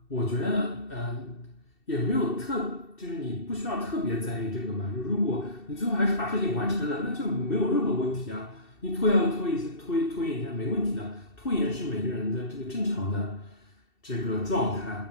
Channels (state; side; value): late; right; 2.7 ms